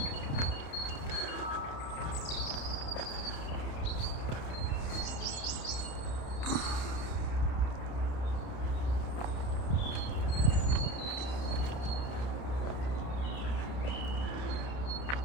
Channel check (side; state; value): right; late; 30 ms